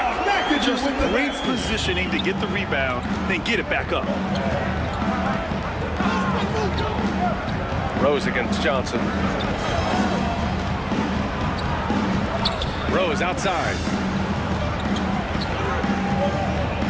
Just great positioning to get the rebound, then get it back up. Rose against Johnson. Rose outside.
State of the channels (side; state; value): both; identical; correlation 1.00